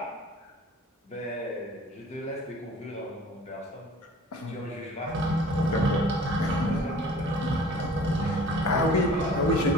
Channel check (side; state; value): both; normal; correlation 0.47